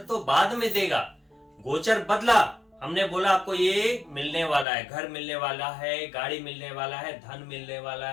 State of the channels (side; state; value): right; drops out; at 4.7 s